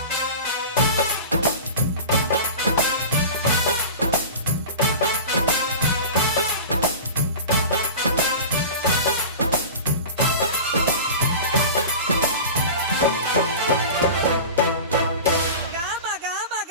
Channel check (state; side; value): inverted; both; correlation -0.33